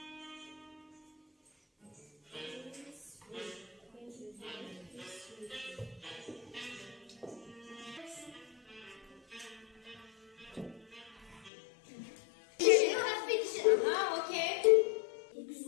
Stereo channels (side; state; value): right; drops out; at 11.5 s